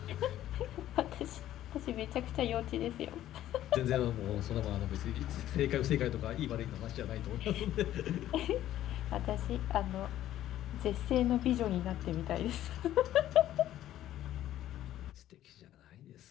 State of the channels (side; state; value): right; quieter; 12.9 dB